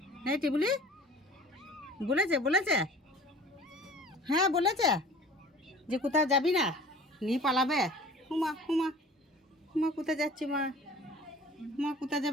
হ্যাঁ টিবুলি, বলেছে বলেছে, হ্যাঁ বলেছে যে কোথাও যাবি না, নিয়ে পালাবে। হুমা হুমা, মা কোথায় যাচ্ছে? মা মা কোথায়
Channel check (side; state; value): both; normal; correlation 0.45